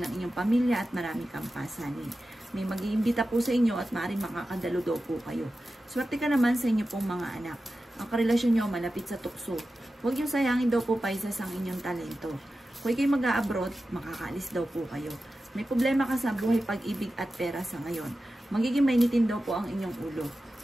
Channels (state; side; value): normal; both; correlation 0.93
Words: ng inyong pamilya at marami kang pasanin. May mag-iimbita po sa inyo at maaaring makakadalo daw po kayo. Swerte ka naman sa inyo pong mga anak. Ang karelasyon nyo malapit sa tukso. Huwag yung sayangin daw po, Pisces, ang inyong talento. Kung kayo mag-a-abroad, makakaalis daw po kayo. May problema ka sa buhay, pag-ibig at pera sa ngayon. Magiging mainitin daw po ang inyong ulo.